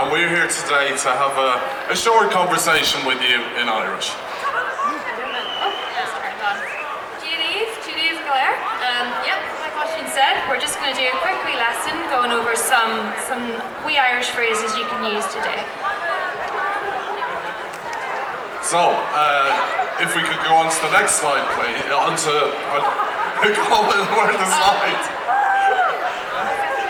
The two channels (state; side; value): identical; both; correlation 1.00